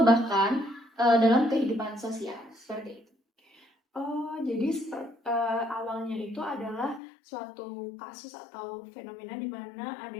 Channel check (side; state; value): right; drops out; at 7.0 s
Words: bahkan dalam kehidupan sosial, seperti itu. Oh, jadi awalnya itu adalah suatu kasus atau fenomena di mana